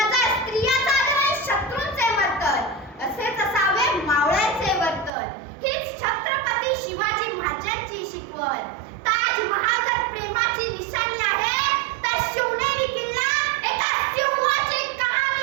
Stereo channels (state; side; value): drops out; left; at 5.1 s